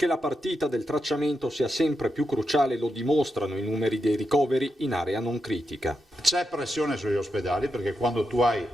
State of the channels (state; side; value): normal; both; correlation 0.86